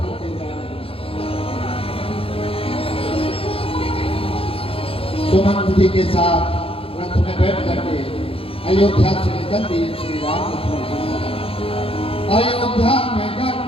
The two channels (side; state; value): right; late; 0.27 ms